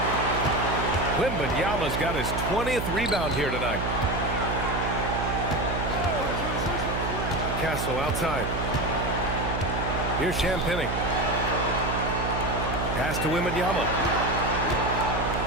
Wembanyama's got his 20th rebound here tonight. Castle outside. Here's Champagnie. Pass to Wembanyama.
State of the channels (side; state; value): right; noise; hum, 3 dB below the sound